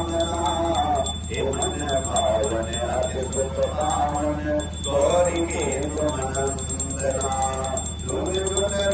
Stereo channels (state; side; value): identical; both; correlation 1.00